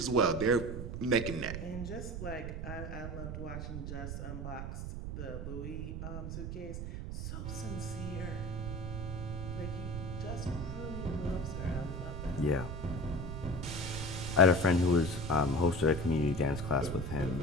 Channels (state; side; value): noise; right; rumble, 5 dB below the sound